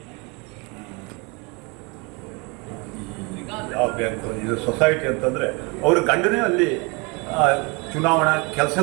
ಯಾವ ಬ್ಯಾಂಕ್ ಇದು ಸೊಸೈಟಿ ಅಂತಂದರೆ ಅವ್ರ ಗಂಡನೇ ಅಲ್ಲಿ ಚುನಾವಣಾ ಕೆಲಸ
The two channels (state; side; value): quieter; left; 29.4 dB